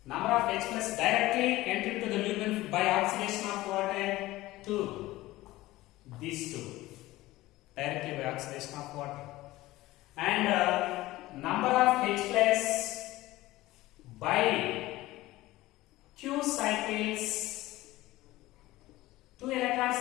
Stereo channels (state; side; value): quieter; right; 17.8 dB